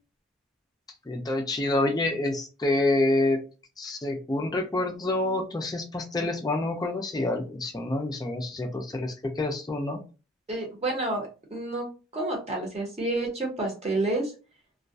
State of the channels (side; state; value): both; normal; correlation 0.60